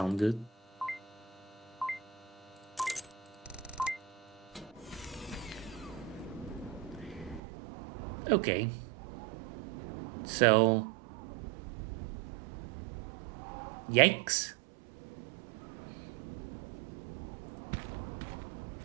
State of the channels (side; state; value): left; drops out; at 7.4 s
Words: good. Okay. So... yikes.